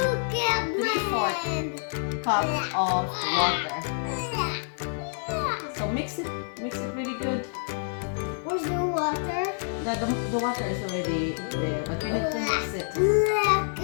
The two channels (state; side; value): silent; right; digital silence